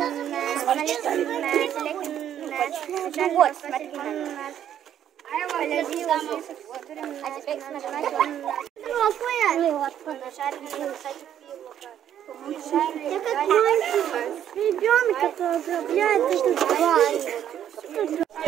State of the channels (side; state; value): left; quieter; 10.2 dB